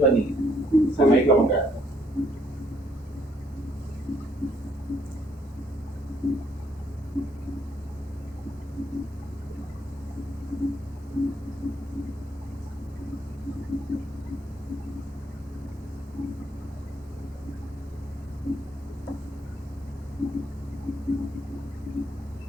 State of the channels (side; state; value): both; normal; correlation 0.69